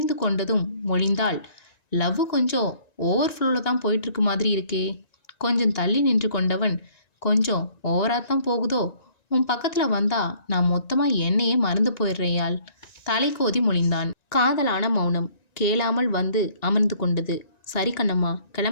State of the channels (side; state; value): right; late; 1.9 ms